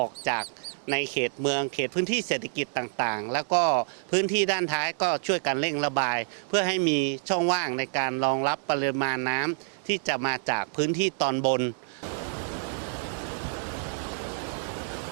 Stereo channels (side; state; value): left; silent; digital silence